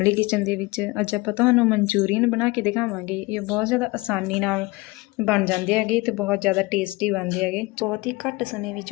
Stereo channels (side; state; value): right; quieter; 22.7 dB